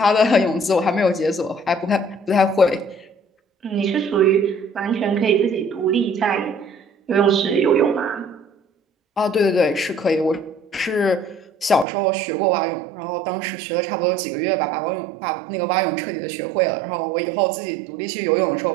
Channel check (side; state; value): left; drops out; at 11.9 s